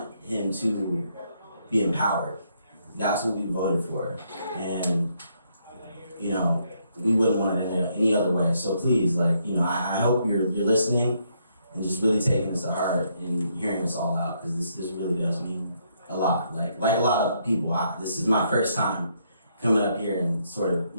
him to be empowered. That's what we voted for. And, we wouldn't want it any other way. So please, I hope you're listening and just really taking this to heart and hearing us all out, because this really does mean a lot. Like a lot of people, this is my first time coming up here and sort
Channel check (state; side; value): inverted; both; correlation -0.74